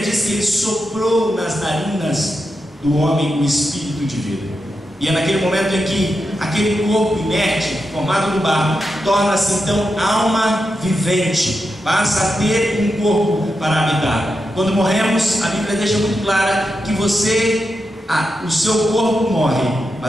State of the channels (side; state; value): both; normal; correlation 0.87